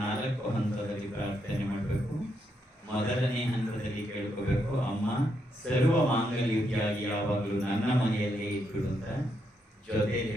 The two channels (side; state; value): both; normal; correlation 0.79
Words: ಹಂತದಲ್ಲಿ ಪ್ರಾರ್ಥನೆ ಮಾಡಬೇಕು. ಮೊದಲನೇ ಹಂತದಲ್ಲಿ ಕೇಳ್ಕೋಬೇಕು, ಅಮ್ಮ ಸರ್ವ ಮಾಂಗಲ್ಯಕ್ಕಾಗಿ ಯಾವಾಗಲೂ ನನ್ನ ಮನೆಯಲ್ಲೇ ಇಟ್ಟು ಅಂತ. ಜೊತೆ